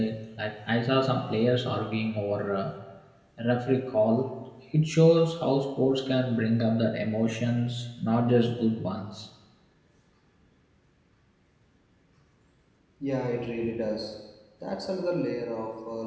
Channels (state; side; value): identical; both; correlation 1.00